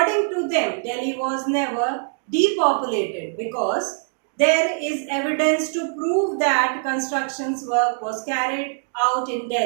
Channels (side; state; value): left; silent; digital silence